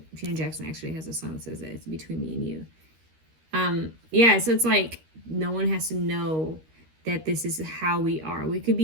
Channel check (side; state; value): left; late; 13 ms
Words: Janet Jackson actually has a song that says that it's between me and you. Yeah, so it's like no one has to know that this is how we are. We could